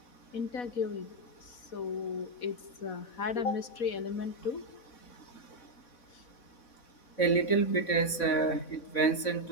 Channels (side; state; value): right; late; 4.1 ms